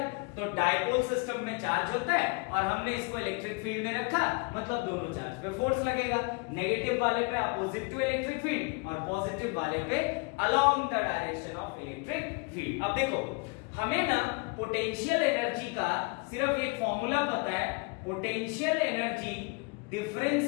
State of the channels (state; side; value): quieter; right; 30.1 dB